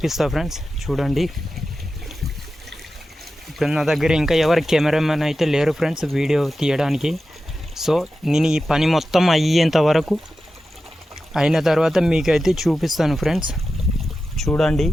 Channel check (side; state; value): both; normal; correlation 0.92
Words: ఫ్రెండ్స్. చూడండి, ఇప్పుడు నా దగ్గర ఇంకా ఎవరు కెమెరామెన్ అయితే లేరు ఫ్రెండ్స్ వీడియో తీయడానికి. సో నేను ఈ పని మొత్తం అయ్యేంత వరకు అయిన తర్వాత మీకైతే చూపిస్తాను ఫ్రెండ్స్. చూడండి,